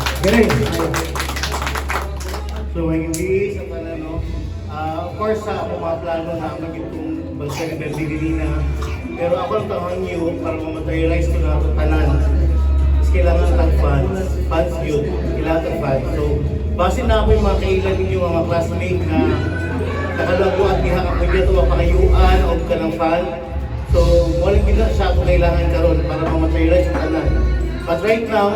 Ray, so, hindi sa pala, no? Of course, ako mga plano na magiging balsa ni Berlin na. Pero ako ang taon niyo para ma-materialize ko na ito tanan. Mas kailangan ng funds yun. Kailangan ng funds. So, base na ako yung mga kailan ninyo, mga classmate na nakalago at diha ako dito mapakayuan o ka ng fund. So, walang gina siya kung kailangan karon para ma-materialize yung tanan. But right now,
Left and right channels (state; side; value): identical; both; correlation 1.00